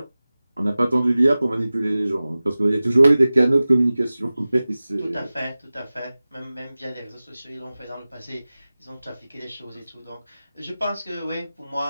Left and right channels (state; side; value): inverted; both; correlation -0.97